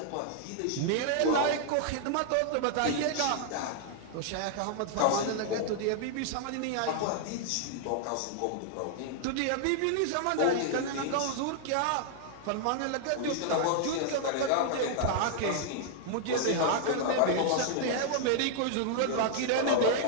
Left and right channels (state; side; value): different; both; correlation -0.01